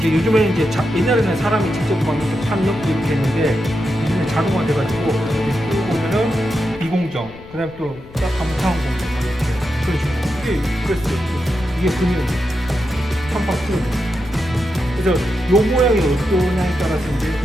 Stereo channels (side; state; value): left; noise; rumble, 19 dB below the sound